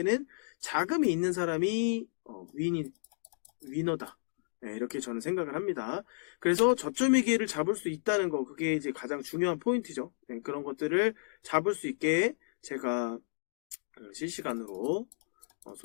자금이 있는 사람이 위너다. 네, 이렇게 저는 생각을 합니다. 그래서 저점의 기회를 잡을 수 있다는 거, 그게 이제 가장 중요한 포인트죠. 네, 그런 것들을 잡을 수 있게 제가 실시간으로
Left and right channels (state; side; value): silent; right; digital silence